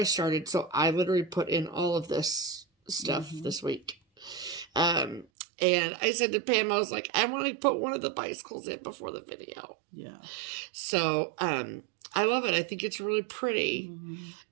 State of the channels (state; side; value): drops out; left; at 5.2 s